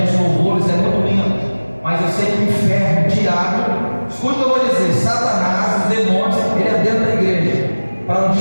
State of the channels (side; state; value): both; inverted; correlation -1.00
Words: de louvores é muito lindo, mas eu sei que o inferno, o diabo, escute o que eu vou dizer: Satanás, os demônios, ele é dentro da igreja para nos